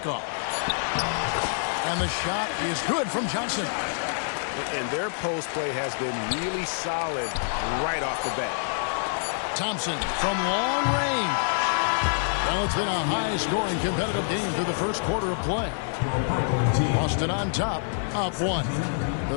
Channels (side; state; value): right; silent; 61 dB below the other